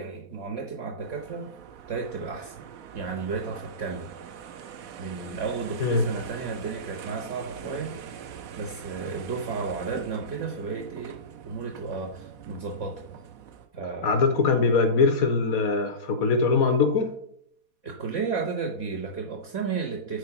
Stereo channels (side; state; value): right; late; 4.2 ms